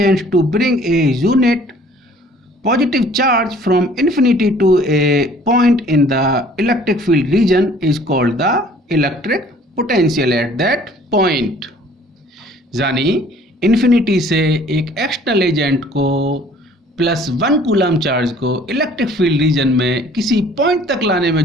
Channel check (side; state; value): both; normal; correlation 0.54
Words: to bring a unit positive charge from infinity to a point in the electric field region is called the electric potential at that point। यानी infinity से एक external agent को +1 coulomb charge को electric field region में किसी point तक लाने में